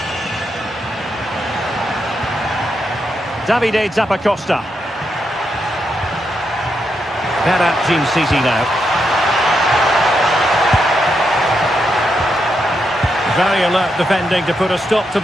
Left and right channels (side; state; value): both; normal; correlation 0.82